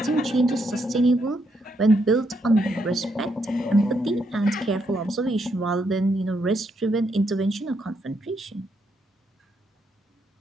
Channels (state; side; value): normal; both; correlation 0.77